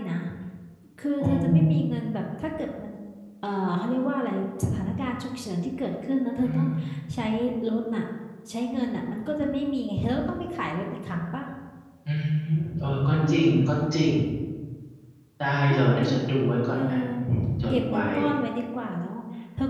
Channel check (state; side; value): identical; both; correlation 1.00